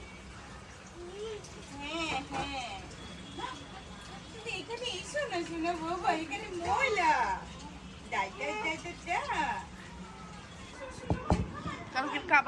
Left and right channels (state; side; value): identical; both; correlation 1.00